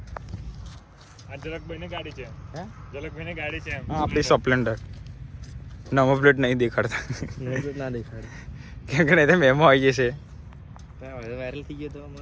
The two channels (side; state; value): both; identical; correlation 1.00